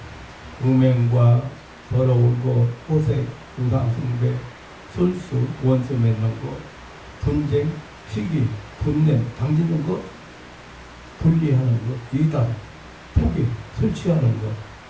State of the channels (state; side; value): identical; both; correlation 1.00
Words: 음행과 더러운 것, 호색, 우상숭배, 술수, 원수 맺는 것, 분쟁, 시기, 분냄, 당기는 것, 분리하는 것, 이단, 포기, 술 취하는